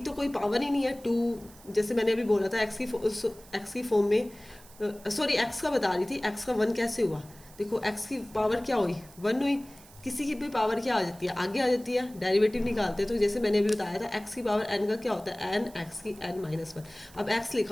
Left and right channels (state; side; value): noise; right; hiss, 22 dB below the sound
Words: कोई पावर ही नहीं है, 2 जैसे मैंने अभी बोला था एक्स की फॉर्म में, सॉरी एक्स का बता रही थी, एक्स का 1 कैसे हुआ। देखो एक्स की पावर क्या हुई, 1 हुई। किसी की भी पावर क्या आ जाती है, आगे आ जाती है, डेरिवेटिव निकालते हैं। तो जैसे मैंने अभी बताया था एक्स की पावर n का क्या होता है, n x की n-1। अब x